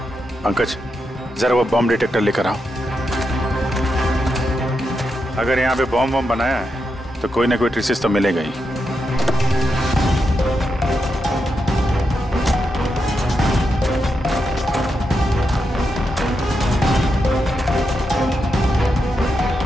पंकज, जरा वो बॉम्ब डिटेक्टर लेकर आओ। अगर यहाँ पे बॉम्ब बनाया है तो कोई ना कोई ट्रेसेस तो मिलेगा ही।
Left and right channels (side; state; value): both; normal; correlation 0.85